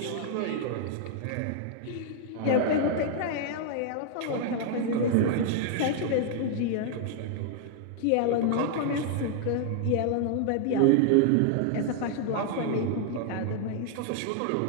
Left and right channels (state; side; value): different; both; correlation 0.00